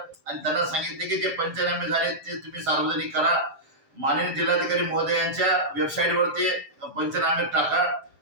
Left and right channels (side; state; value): left; late; 7.7 ms